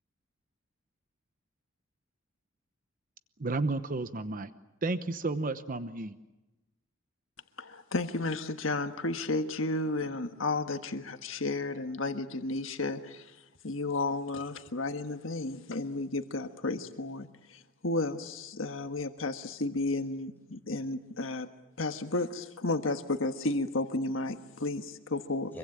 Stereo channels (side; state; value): both; normal; correlation 0.15